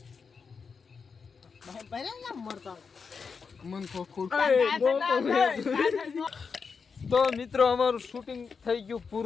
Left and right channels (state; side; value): quieter; right; 5.5 dB